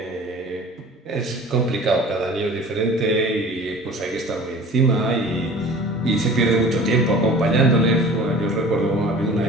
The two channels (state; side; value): normal; both; correlation 0.43